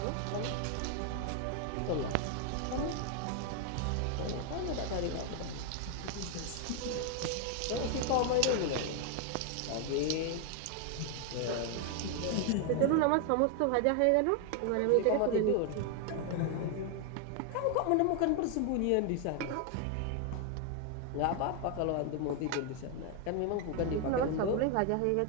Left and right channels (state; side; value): different; both; correlation 0.00